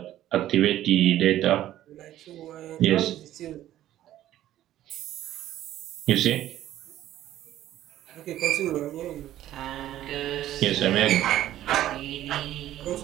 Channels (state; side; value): quieter; left; 13.1 dB